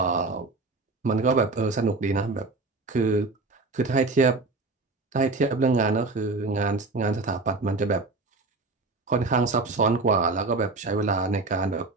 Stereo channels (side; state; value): left; quieter; 3.5 dB